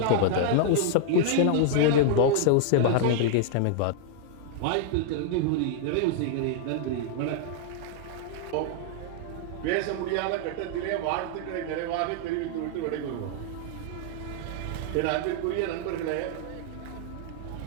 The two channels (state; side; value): different; both; correlation -0.01